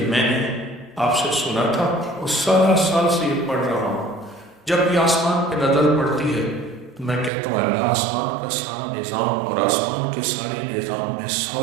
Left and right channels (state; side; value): drops out; left; at 7.3 s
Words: میں نے آپ سے سنا تھا اور سارا سال سے یہ پڑھ رہا ہوں، جب بھی آسمان پہ نظر پڑتی ہے تو میں کہتا ہوں اللہ آسمان کا سارا نظام اور آسمان کے سارے نظام میں